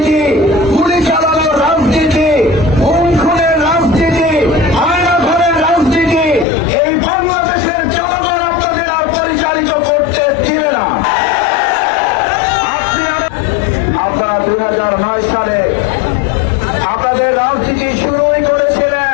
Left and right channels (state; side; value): drops out; right; at 6.5 s